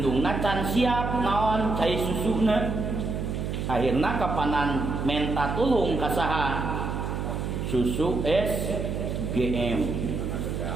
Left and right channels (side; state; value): right; noise; hum, 3 dB below the sound